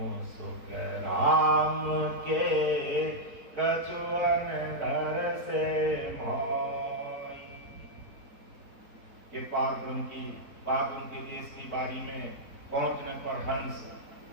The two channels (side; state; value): left; late; 4.0 ms